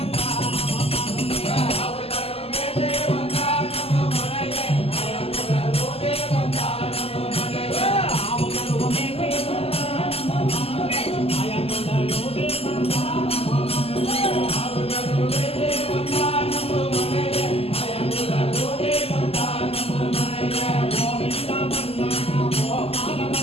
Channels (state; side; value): late; right; 0.29 ms